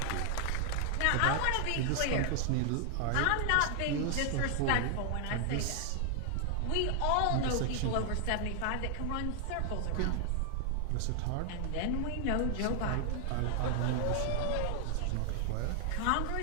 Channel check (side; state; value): both; different; correlation 0.00